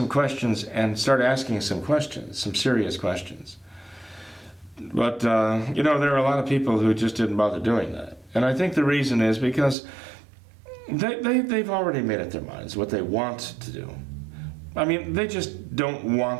questions and start asking some questions, some serious questions. But, there are a lot of people who just didn't bother doing that. And I think the reason is because they've already made up their minds what they want to do. I mean, they just don't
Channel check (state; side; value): drops out; left; at 9.8 s